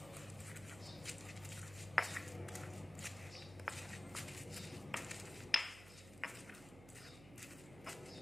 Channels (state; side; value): noise; right; hum, 15 dB below the sound